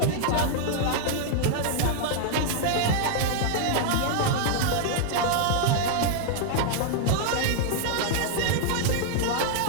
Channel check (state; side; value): different; both; correlation -0.01